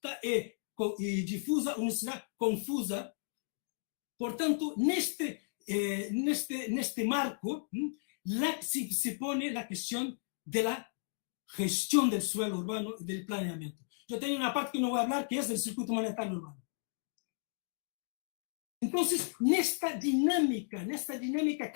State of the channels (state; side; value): silent; right; digital silence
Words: e difusa, uma cidade confusa. Portanto, neste marco, se põe a questão da gestão do suelo urbano e do planeamento. Eu tenho uma parte que não vou falar, que é do circuito monetário urbano. Então, nesta dinâmica